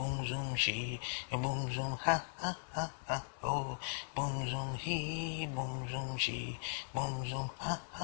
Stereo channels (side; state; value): right; silent; digital silence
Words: zoom she boom zoom ha ha ha ha oh boom zoom he boom zoom she boom zoom ha